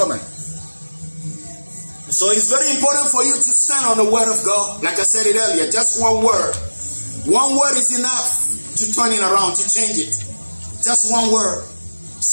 So it's very important for you to stand on the word of God. Like I said it earlier, just one word. One word is enough to turn it around, to change it. Just one word.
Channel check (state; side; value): inverted; both; correlation -1.00